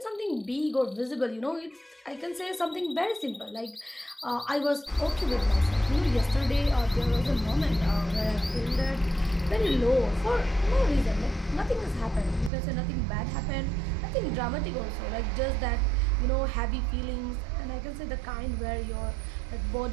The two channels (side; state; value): left; drops out; at 12.5 s